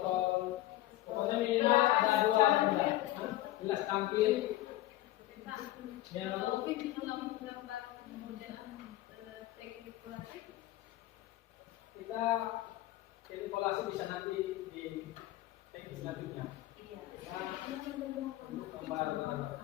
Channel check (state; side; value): quieter; right; 15.8 dB